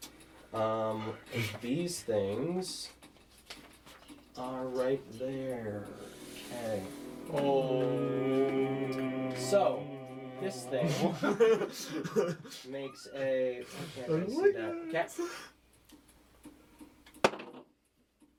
These things are right there. Okay. Oh. So, this thing makes a. I can't really see that. Okay.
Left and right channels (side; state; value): both; identical; correlation 1.00